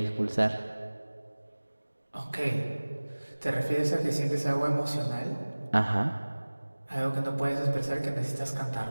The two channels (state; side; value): inverted; both; correlation -1.00